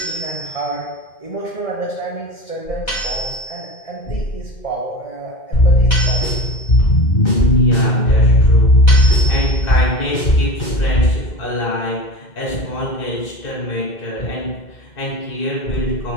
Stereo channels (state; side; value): late; right; 2.1 ms